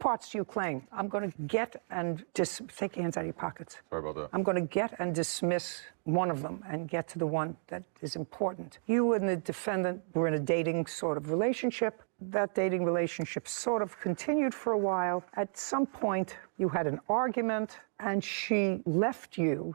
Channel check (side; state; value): left; silent; digital silence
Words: to your claim. I'm going to get and take your hands out of your pockets. Sorry about that. I'm going to get and dismiss one of them and get to the one that is important. You and the defendant were in a dating sort of relationship. That dating relationship sort of continued for a while. At some point, you had an argument and she left